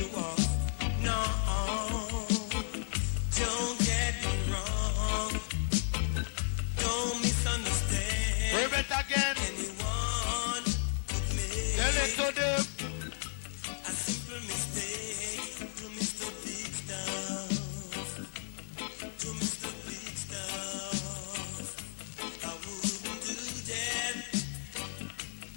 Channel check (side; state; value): right; silent; digital silence